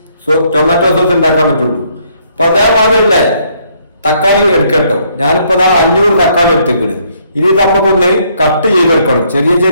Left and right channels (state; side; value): inverted; both; correlation -0.69